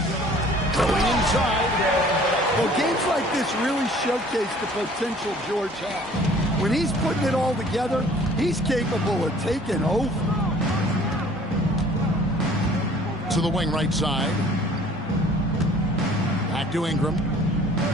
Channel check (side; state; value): both; normal; correlation 0.52